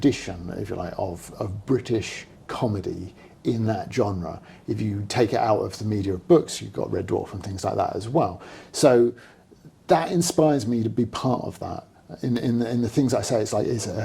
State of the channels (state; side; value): identical; both; correlation 1.00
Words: if you like, of British comedy in that genre. If you take it out of the media of books, you've got Red Dwarf and things like that as well. So that inspires me to be part of that. In the things I say, it's